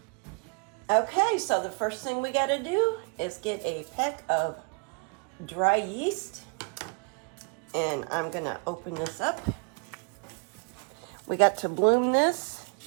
Okay, so the first thing we got to do is get a pack of dry yeast, and I'm going to open this up. We got to bloom this.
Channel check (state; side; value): quieter; left; 35.0 dB